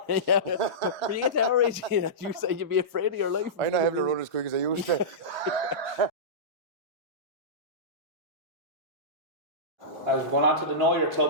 yeah, when you get to our age, you say you'd be afraid of your life. I not have to run as quick as I used to. I was going on to the Know Your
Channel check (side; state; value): left; late; 1.1 ms